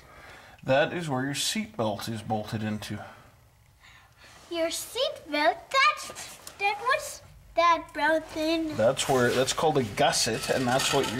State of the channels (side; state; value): both; identical; correlation 1.00